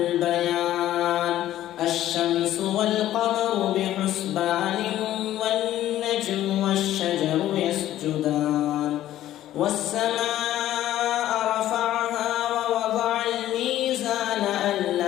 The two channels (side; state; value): right; quieter; 13.2 dB